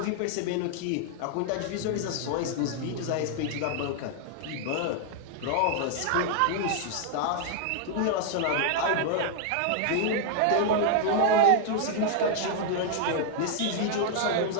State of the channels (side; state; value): both; different; correlation 0.00